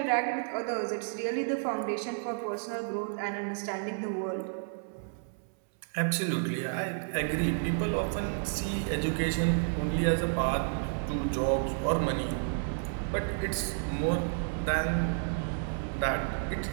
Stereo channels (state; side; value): silent; left; 57 dB below the other